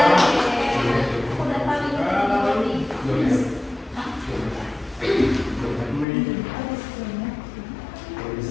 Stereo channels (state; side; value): drops out; right; at 6.1 s